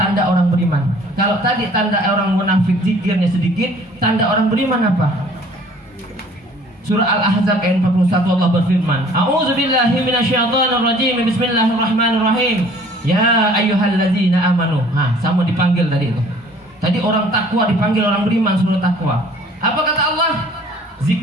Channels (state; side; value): normal; both; correlation 0.54